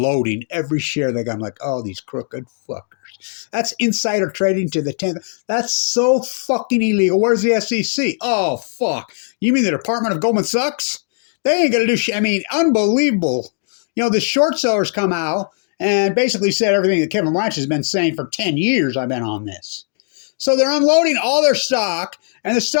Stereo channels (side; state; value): right; silent; 67 dB below the other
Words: every share they got. I'm like, oh, these crooked fuckers. That's insider trading to the 10th. That's so fucking illegal. Where's the SEC? Oh, fuck. You mean the Department of Goldman Sachs? They ain't going to do shit. I mean, unbelievable. The short sellers come out and basically said everything that Kevin Blanch has been saying for 10 years. I've been on this. So they're unloading all their stock, and the